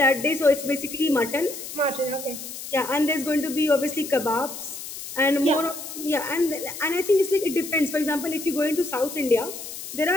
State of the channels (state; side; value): noise; left; hiss, 10 dB below the sound